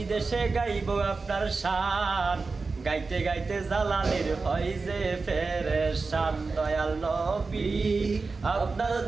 গাইব আপনার শান, গাইতে গাইতে জালালির হয় যে ফেরেশান। দয়াল নবী আপনার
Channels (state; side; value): quieter; left; 4.1 dB